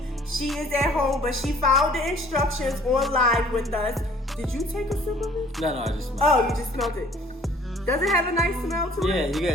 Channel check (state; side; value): normal; both; correlation 0.55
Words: She is at home, but she found the instructions online with us. Did you take a sip of it? No, I just smelled it. Oh, you just smelled it. Does it have a nice smell to it? Yeah, you